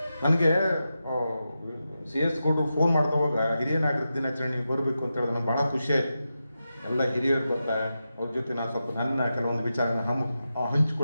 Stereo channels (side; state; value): both; inverted; correlation -0.90